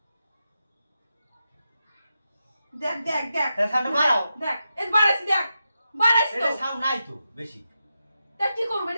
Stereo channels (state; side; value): inverted; both; correlation -0.88